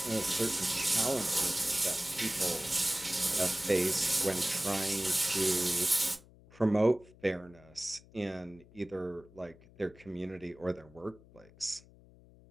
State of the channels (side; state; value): left; noise; hum, 24 dB below the sound